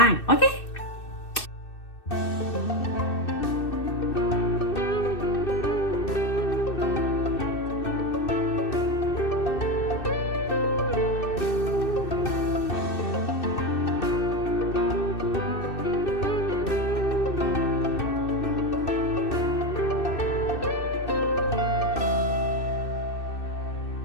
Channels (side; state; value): right; late; 2.6 ms